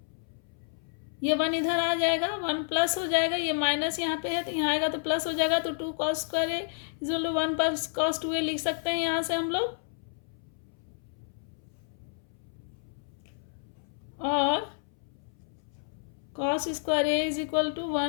ये 1 इधर आ जाएगा, 1 प्लस हो जाएगा, ये माइनस यहाँ पे है तो यहाँ आएगा तो प्लस हो जाएगा, तो 2 cos2a is equal to 1 + cos2a लिख सकते हैं यहाँ से हम लोग। और cos square a is equal to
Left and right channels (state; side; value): silent; right; 58 dB below the other